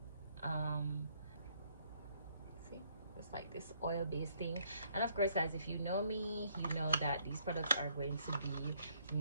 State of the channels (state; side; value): inverted; both; correlation -0.67